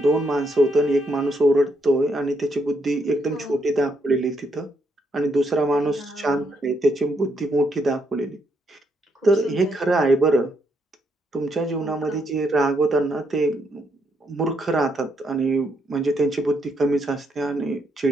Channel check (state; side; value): normal; both; correlation 0.76